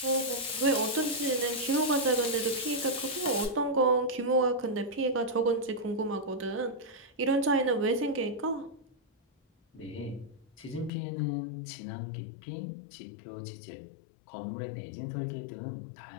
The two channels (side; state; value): right; drops out; at 10.9 s